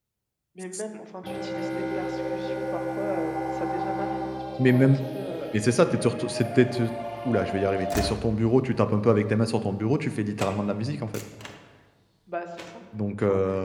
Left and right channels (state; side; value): identical; both; correlation 1.00